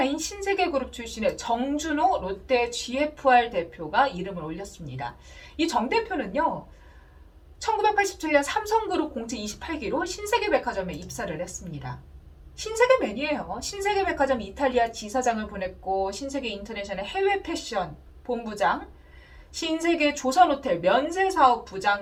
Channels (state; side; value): identical; both; correlation 1.00